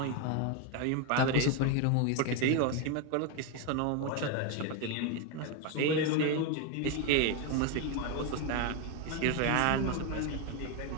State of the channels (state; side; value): different; both; correlation 0.01